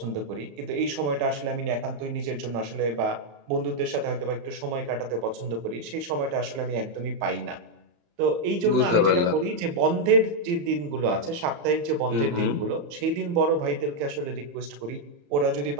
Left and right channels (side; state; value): left; late; 35 ms